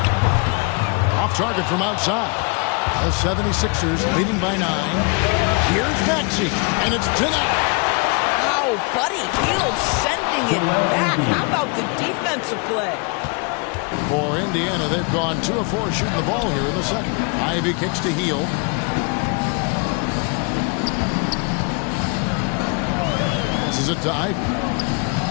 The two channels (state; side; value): quieter; right; 33.7 dB